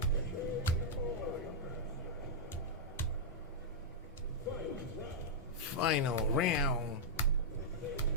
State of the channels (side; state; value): both; normal; correlation -0.07